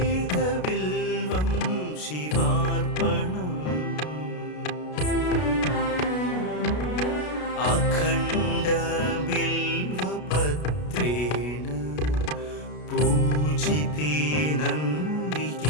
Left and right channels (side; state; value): right; late; 33 ms